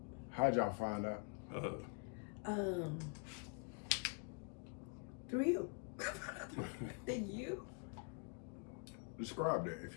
How'd y'all find out? Through you. You? Describe that if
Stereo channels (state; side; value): quieter; right; 38.4 dB